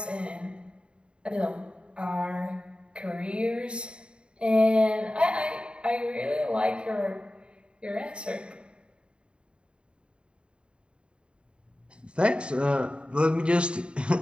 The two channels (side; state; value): left; late; 0.054 ms